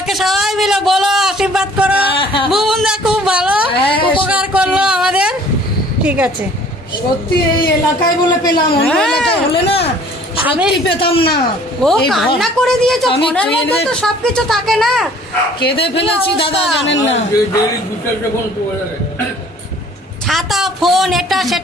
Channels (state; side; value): normal; both; correlation 0.53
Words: সবাই মিলে বলো আশীর্বাদ করো। বুবুনদা খুব ভালো উপকার করলো আমাদের। ঠিক আছে, সত্যি এই এলাকায় বলে পেলাম, অন্য এলাকায় হলে না আমি পেতাম না। ও কান্না করে দিয়েছো, ফোনের মধ্যে তো সবকিছু থাকে না। কেঁদে ফেলেছি দাদা, জানেন না। ছাতা ফোন এটা